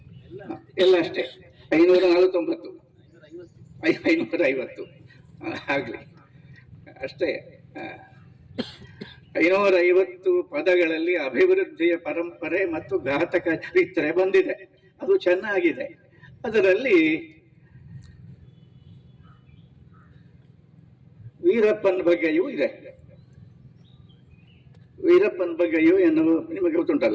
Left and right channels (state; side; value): identical; both; correlation 1.00